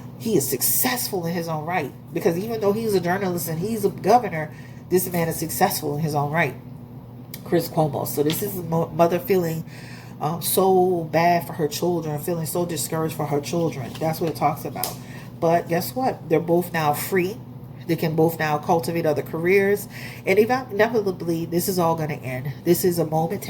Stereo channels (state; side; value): identical; both; correlation 1.00